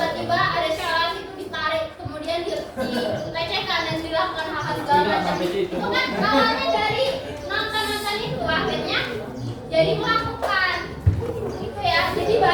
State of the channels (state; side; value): identical; both; correlation 1.00